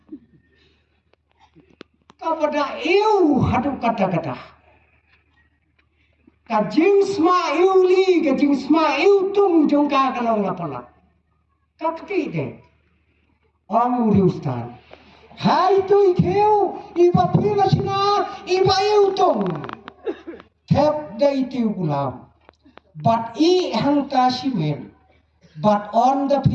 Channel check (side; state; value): both; identical; correlation 1.00